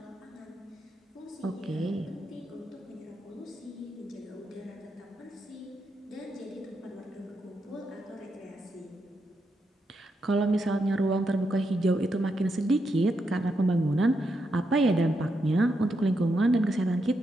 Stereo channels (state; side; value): normal; both; correlation 0.82